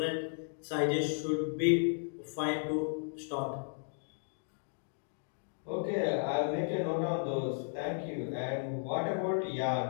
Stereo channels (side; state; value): right; silent; digital silence